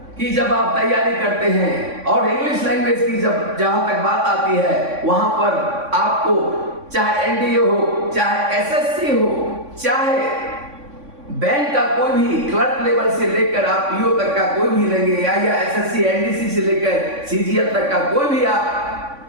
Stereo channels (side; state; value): left; late; 3.6 ms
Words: की जब आप तैयारी करते हैं और इंग्लिश लैंग्वेज की जब जहां तक बात आती है, वहां पर आपको चाहे एनडीए हो, चाहे एसएससी हो, चाहे बैंक का कोई भी क्लर्क लेवल से लेकर आप पीओ तक का कोई भी लेंगे, या एसएससी एनडीसी से लेकर सीजीएल तक का कोई भी